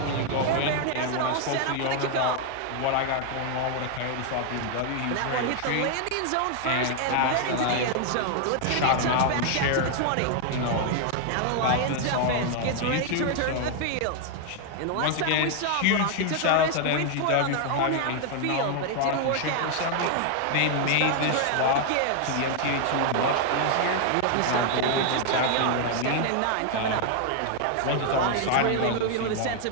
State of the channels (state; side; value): different; both; correlation 0.00